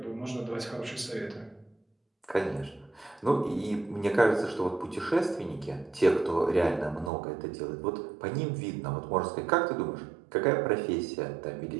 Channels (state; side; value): drops out; left; at 7.1 s